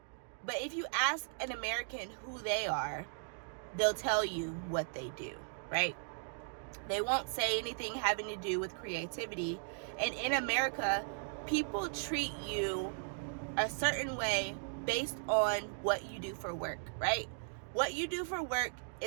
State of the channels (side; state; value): left; silent; digital silence